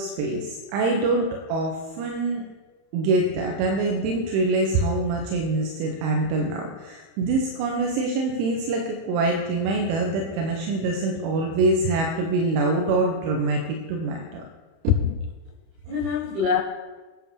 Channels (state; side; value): late; left; 31 ms